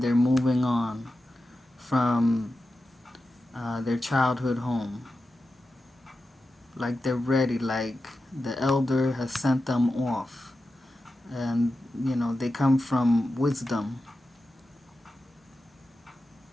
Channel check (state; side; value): normal; both; correlation 0.91